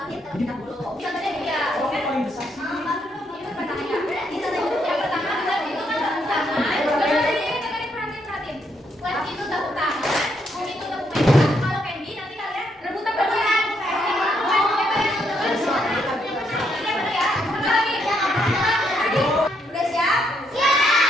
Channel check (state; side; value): normal; both; correlation 0.75